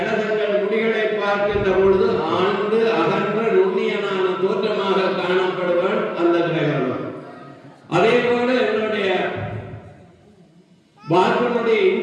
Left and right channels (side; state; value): both; identical; correlation 1.00